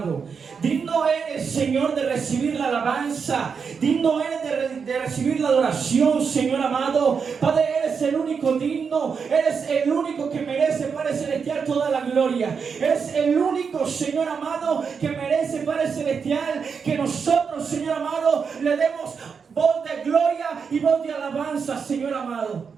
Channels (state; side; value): quieter; left; 6.0 dB